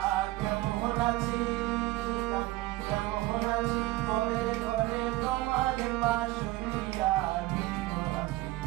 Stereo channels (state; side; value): quieter; left; 18.4 dB